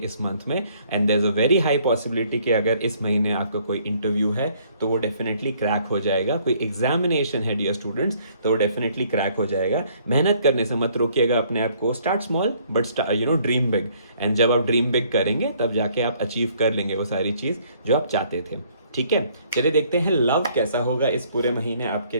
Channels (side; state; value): both; inverted; correlation -0.63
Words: मंथ में। And there is a very high possibility कि अगर इस महीने आपका कोई इंटरव्यू है तो वो डेफिनेटली क्रैक हो जाएगा। कोई एग्जामिनेशन है डियर स्टूडेंट्स तो वो डेफिनेटली क्रैक हो जाएगा। मेहनत करने से मत रोकिएगा अपने आप को। Start small but dream big. And जब आप ड्रीम बिग करेंगे तब जाके आप अचीव कर लेंगे वो सारी चीज़ जो आप चाहते थे। ठीक है, चलिए देखते हैं लव कैसा होगा इस पूरे महीने आपके